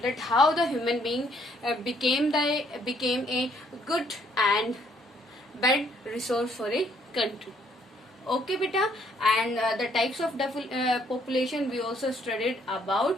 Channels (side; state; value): both; normal; correlation 0.67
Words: that how the human being became a good and bad resource for a country. Okay, beta. And the types of population we also studied about